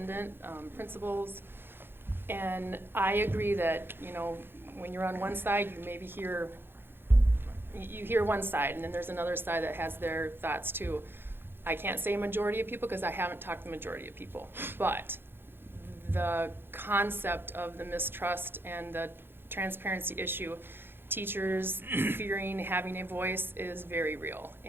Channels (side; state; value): left; late; 0.10 ms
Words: principals, and I agree that, you know, when you're on one side, you maybe hear one side, and then there's another side that has their thoughts too. I can't say majority of people because I haven't talked to the majority of people, but the concept of the mistrust and the transparency issue, teachers fearing having a voice, is very real.